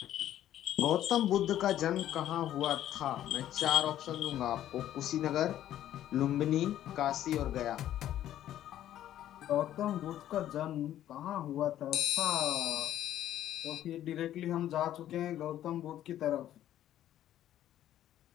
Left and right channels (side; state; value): right; quieter; 12.1 dB